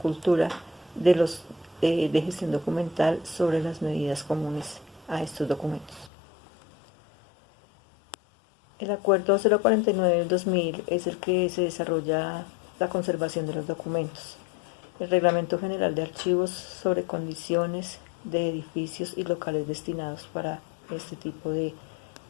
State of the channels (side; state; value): right; drops out; at 6.1 s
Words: de gestión documental sobre las medidas comunes a estos documentos. El acuerdo 049 del 2000 es el que se desarrolla la conservación de los documentos. El Reglamento General de Archivos sobre condiciones de edificios y locales destinados para este tipo de